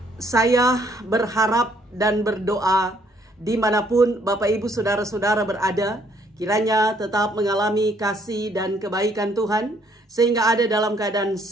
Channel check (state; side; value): normal; both; correlation 0.66